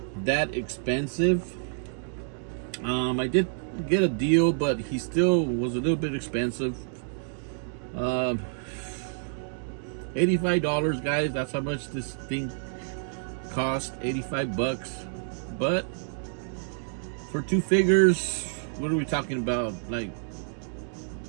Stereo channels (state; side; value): silent; left; digital silence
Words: that expensive. I did get a deal, but he still was a little bit expensive. $85, guys. That's how much this thing cost. 85 bucks. But for two figures, what are we talking about? Like,